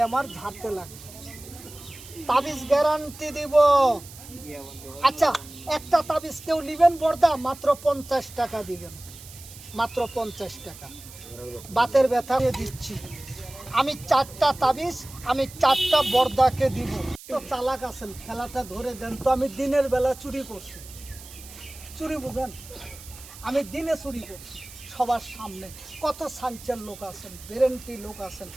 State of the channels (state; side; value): noise; right; hiss, 17 dB below the sound